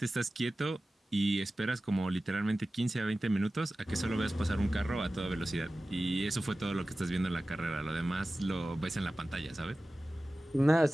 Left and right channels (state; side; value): normal; both; correlation 0.96